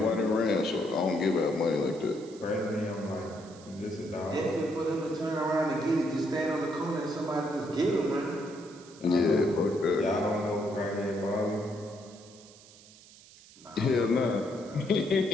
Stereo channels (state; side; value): noise; right; hiss, 22 dB below the sound